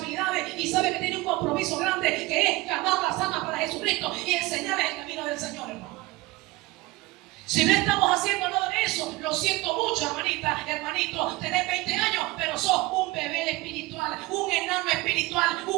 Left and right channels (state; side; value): quieter; left; 21.4 dB